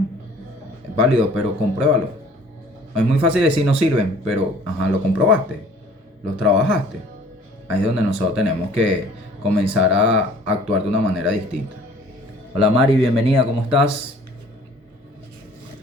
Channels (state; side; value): normal; both; correlation 0.52